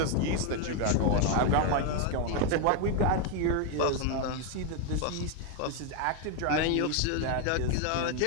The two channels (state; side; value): different; both; correlation 0.01